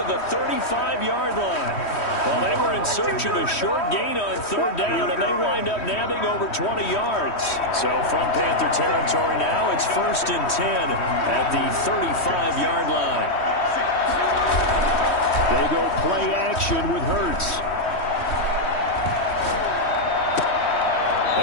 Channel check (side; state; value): right; late; 3.1 ms